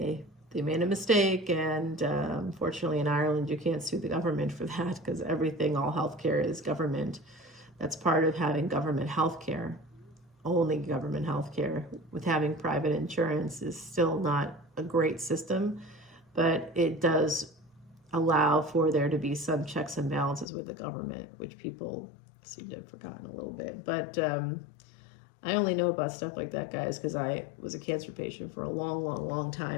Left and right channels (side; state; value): right; drops out; at 20.5 s